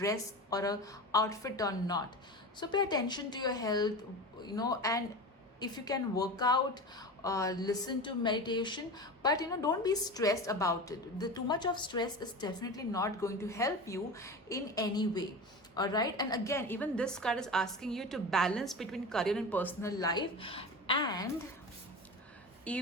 or a outfit or not. So pay attention to your health, and if you can work out, listen to meditation, but don't be stressed about it. The too much of stress is definitely not going to help you in any way. All right, and again, even this card is asking you to balance between career and personal life, and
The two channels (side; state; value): both; normal; correlation 0.29